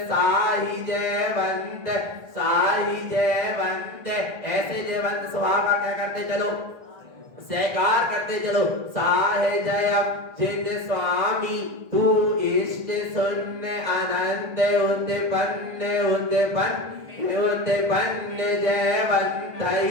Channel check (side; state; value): left; late; 1.6 ms